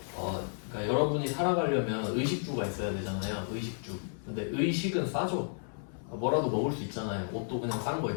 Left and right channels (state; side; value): silent; right; digital silence